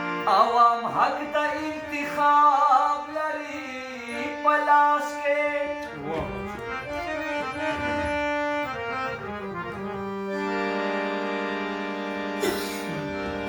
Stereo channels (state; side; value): identical; both; correlation 1.00